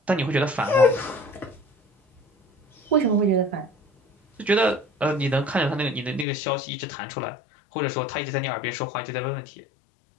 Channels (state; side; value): drops out; right; at 6.2 s